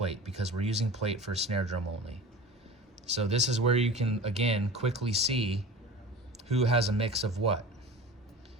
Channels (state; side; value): normal; both; correlation 0.35